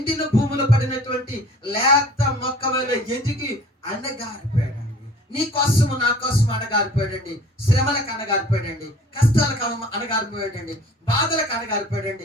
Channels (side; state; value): both; normal; correlation 0.49